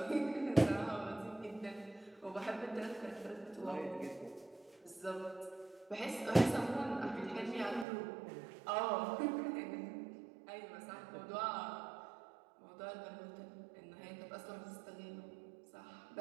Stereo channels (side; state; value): left; drops out; at 7.9 s